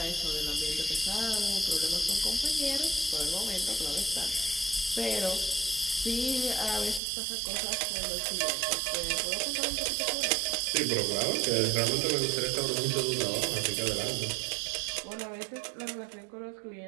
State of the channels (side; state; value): left; drops out; at 7.0 s